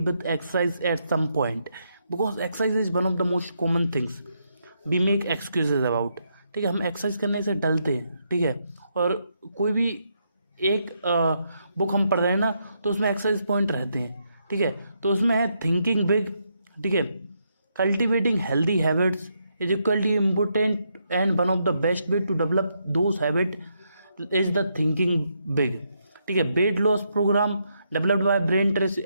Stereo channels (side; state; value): both; inverted; correlation -0.79